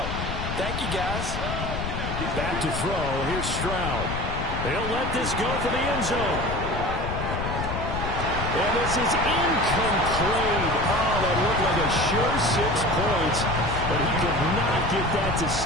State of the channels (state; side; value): noise; left; rumble, 4 dB below the sound